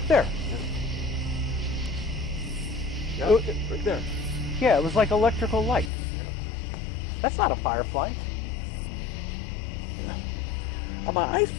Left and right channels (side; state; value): right; drops out; at 5.9 s